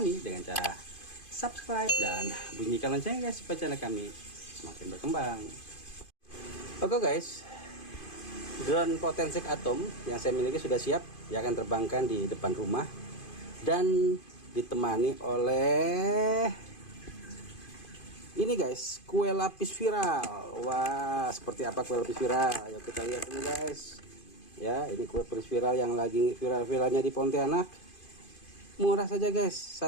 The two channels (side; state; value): right; late; 2.5 ms